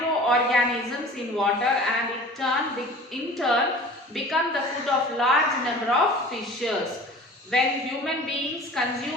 in water and in turn become the food of large number of fishes. When human beings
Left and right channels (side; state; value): both; normal; correlation 0.42